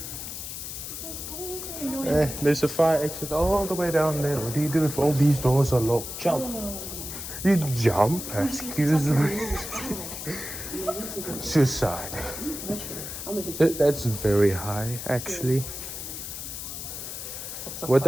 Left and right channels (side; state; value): left; noise; hiss, 8 dB below the sound